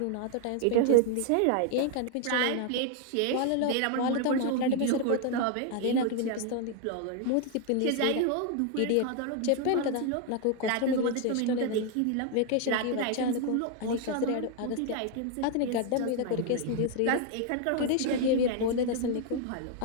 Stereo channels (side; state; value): both; different; correlation 0.00